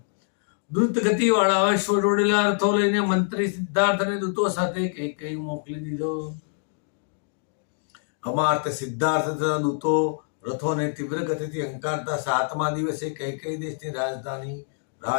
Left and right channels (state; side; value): silent; right; digital silence